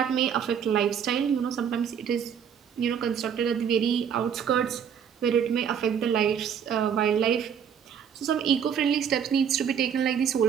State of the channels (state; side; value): quieter; left; 7.9 dB